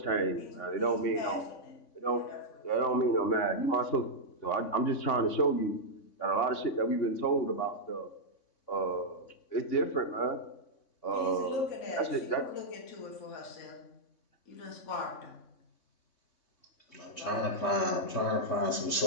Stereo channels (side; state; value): right; late; 3.5 ms